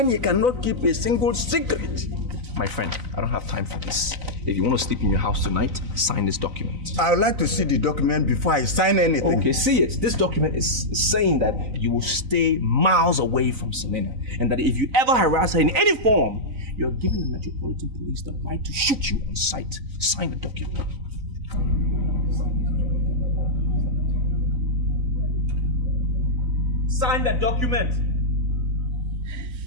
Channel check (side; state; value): left; late; 4.0 ms